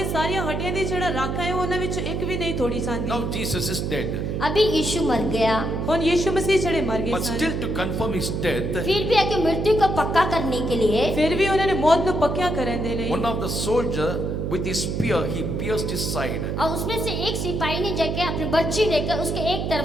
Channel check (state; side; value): noise; right; hum, 2 dB below the sound